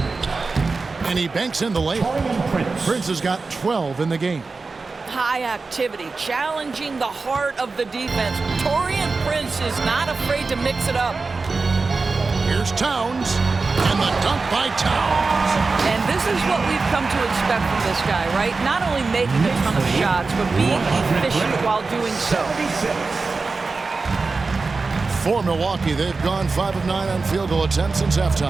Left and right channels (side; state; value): left; quieter; 4.1 dB